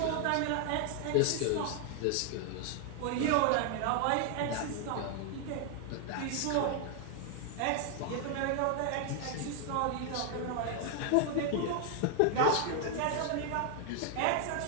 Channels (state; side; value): different; both; correlation 0.00